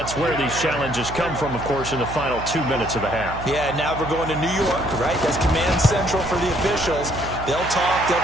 where these challenges come from, of course, in the final 2 minutes of the half. Yeah, now we're going to New York, right? That's command central for the officials. They'll talk, they'll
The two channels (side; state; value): right; noise; hum, 10 dB below the sound